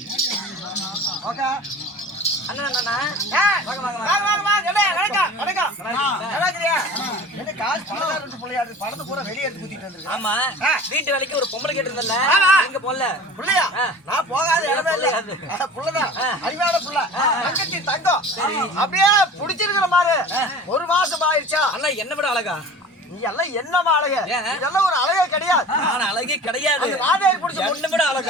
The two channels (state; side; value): normal; both; correlation 0.40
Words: அண்ணா அண்ணா வாங்க வாங்க வாங்க வாங்க. வணக்கம் வணக்கம். நல்லா இருக்கீங்க? என்ன காசு பணக்காரங்க புள்ளையாடு பணத்தை பூரா வெளிய எடுத்து குத்திட்டு வந்திருக்கு. ஆமா, வீட்டு வேலைக்கு ஒரு பொம்பளை கேட்டிருந்தல்ல, எங்க போல புள்ளையா? நான் போகாத இடமே இல்ல. புள்ளதான் அறிவான புள்ள, தங்கச்சி தங்கம். அப்படியே புடிச்சிருக்கிற மாதிரி. ஒரு மாசம் ஆயிடுச்சா? அண்ணா என்ன விட அழகா? நீ எல்லாம் என்னமா அழகு? இதெல்லாம் ஒரு அழகே கிடையாது. நான் அழகே கிடையாது. நாதேரி புடிச்ச ஒண்ணு விட